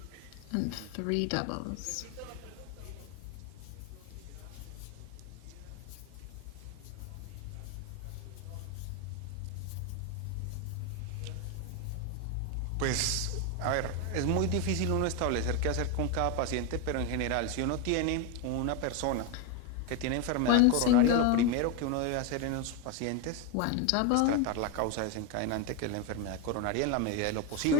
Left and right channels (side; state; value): both; different; correlation 0.02